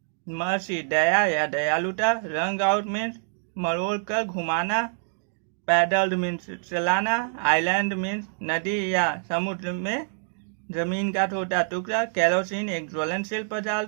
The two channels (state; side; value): silent; left; digital silence